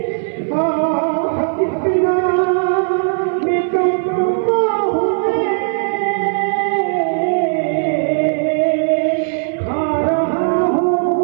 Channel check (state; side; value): silent; left; 57 dB below the other